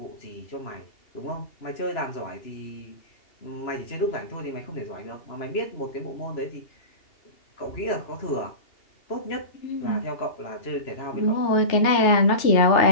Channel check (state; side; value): late; right; 2.8 ms